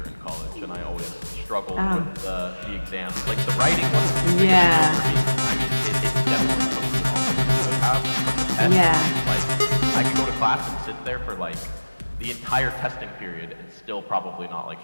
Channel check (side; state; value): both; inverted; correlation -1.00